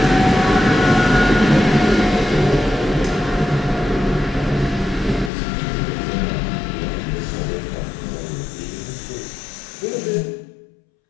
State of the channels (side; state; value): right; drops out; at 5.3 s